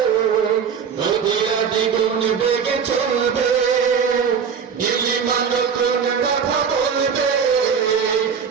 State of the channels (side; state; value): left; quieter; 6.8 dB